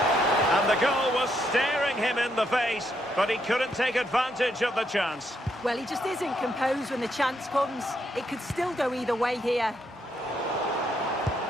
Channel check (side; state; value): both; normal; correlation 0.77